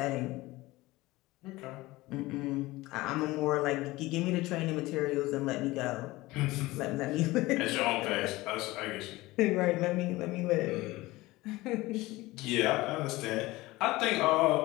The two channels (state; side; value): quieter; right; 19.6 dB